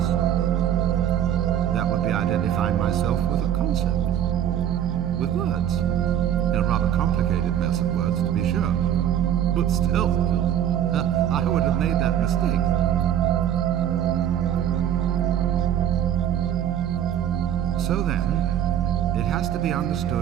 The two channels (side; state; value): left; quieter; 10.2 dB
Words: that would be identifying myself with a concept, with words. A rather complicated mess of words, to be sure. But still, I would have made that mistake. So then, it has to be